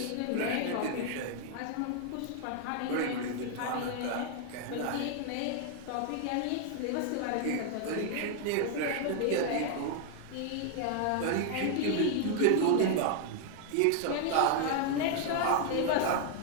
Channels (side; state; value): both; different; correlation 0.00